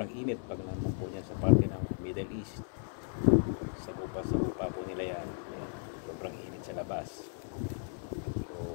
init pag naman po niya sa parte ng Middle East, sagupa po nila yan. Yan, sobrang init sa labas. So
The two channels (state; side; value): silent; right; 54 dB below the other